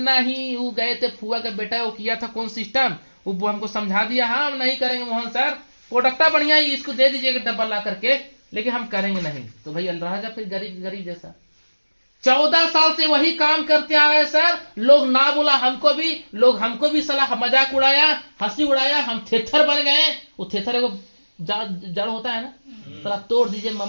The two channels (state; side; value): inverted; both; correlation -1.00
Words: वो गए थे फुआ का बेटा, वो किया था कौन सिस्टम, वो हमको समझा दिया, हाँ हम नहीं करेंगे मोहन सर, प्रोडक्टा बढ़िया ही, इसको दे दीजिएगा डब्बा ला करके, लेकिन हम करेंगे नहीं। तो भाई रह जा फिर गरीब जैसा। 14 साल से वही काम करते आ गए सर, लोग ना बोला हमको भी सलाह मजाक उड़ाया, हंसी उड़ाया, हम थेथर बन गए। वो थेथर एगो जड़ होता है ना, साला तोड़ दीजिए,